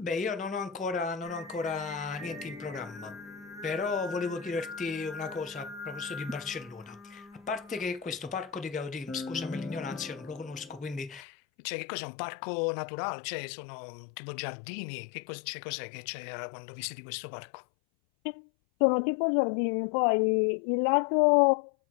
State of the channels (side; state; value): right; drops out; at 11.2 s